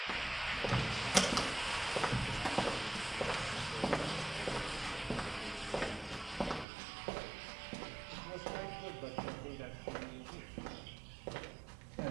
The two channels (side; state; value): left; drops out; at 6.7 s